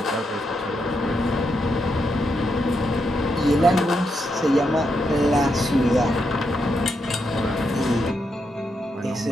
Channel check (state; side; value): normal; both; correlation 0.82